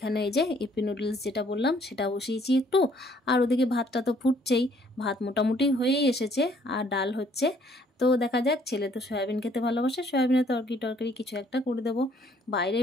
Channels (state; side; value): normal; both; correlation 0.63